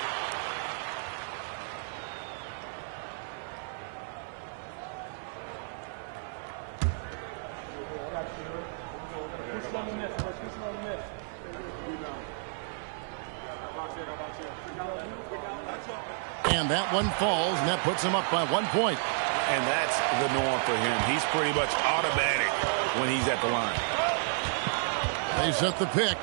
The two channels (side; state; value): left; silent; 57 dB below the other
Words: And that one falls, and that puts him up by 1 point. And that's the norm for him. He's pretty much automatic when he's at the line. They set the pick.